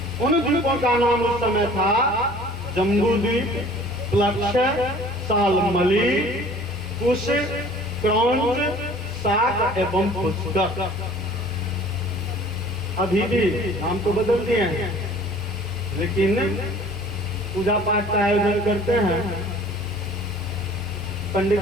उन द्वीपों का नाम उस समय था जम्बू द्वीप, प्लक्ष, सालमली, कुश, क्रौंच, साक एवं पुष्कर। अभी भी नाम तो बदल दिए हैं, लेकिन पूजा पाठ का आयोजन करते हैं, पंडित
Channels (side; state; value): both; normal; correlation 0.49